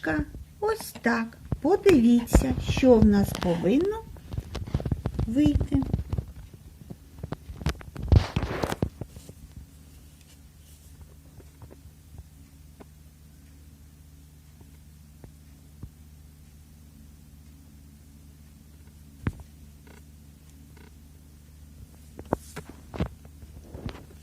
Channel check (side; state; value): both; identical; correlation 1.00